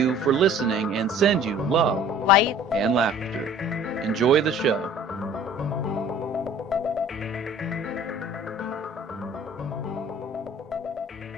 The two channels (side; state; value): both; normal; correlation 0.49